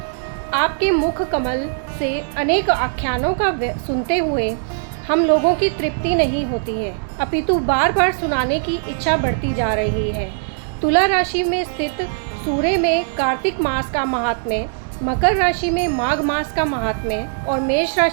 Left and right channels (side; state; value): left; silent; 66 dB below the other